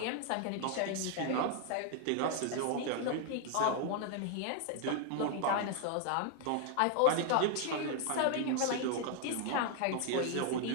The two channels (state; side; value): different; both; correlation 0.00